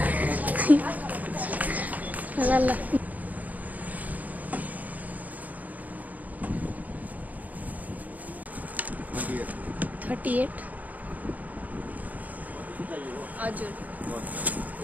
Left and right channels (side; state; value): left; late; 0.078 ms